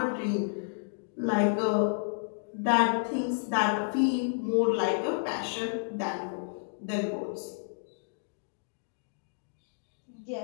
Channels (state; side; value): silent; right; digital silence